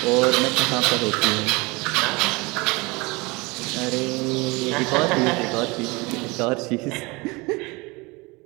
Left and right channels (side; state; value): left; quieter; 25.3 dB